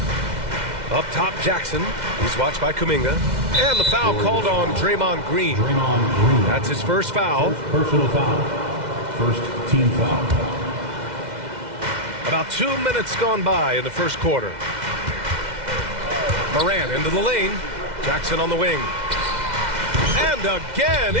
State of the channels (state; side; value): late; left; 2.1 ms